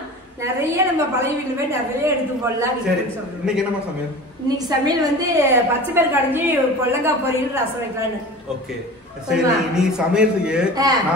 நிறைய நம்ம பழைய வீட்டுல போய் நிறைய எடுத்து போடலாம். இன்னைக்கு என்ன சமையல்? இன்னைக்கு சமையல் வந்து பச்சை பயிர் கடைஞ்சி பொல்லங்காய் பொரியல் ரசம் வைக்கலான்னு. ஓகே, சரி. நீ சமையலுக்கு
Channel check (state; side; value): normal; both; correlation 0.36